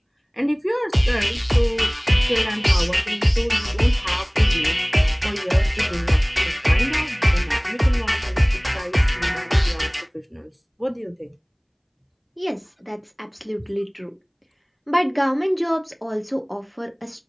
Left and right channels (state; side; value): identical; both; correlation 1.00